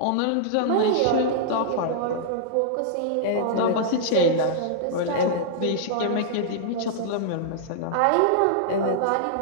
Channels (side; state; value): both; different; correlation -0.01